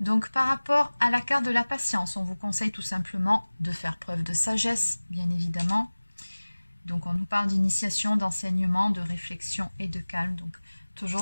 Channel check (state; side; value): inverted; both; correlation -1.00